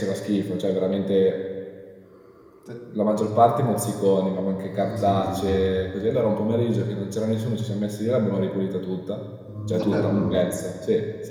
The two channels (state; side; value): identical; both; correlation 1.00